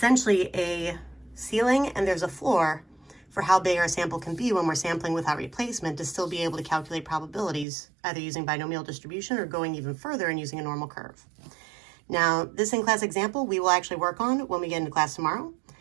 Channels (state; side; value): drops out; left; at 7.7 s